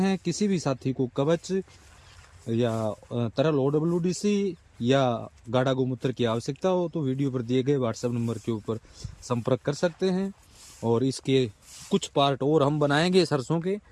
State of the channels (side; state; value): both; identical; correlation 1.00